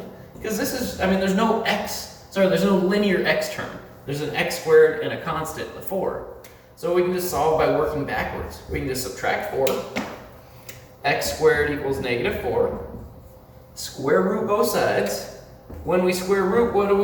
because this is, I mean, there's no linear x term. There's an x squared and a constant, the 4. So we can just solve by working backwards. We can just subtract 4. X squared equals -4. Square root both sides. When we square root, what do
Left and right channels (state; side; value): identical; both; correlation 1.00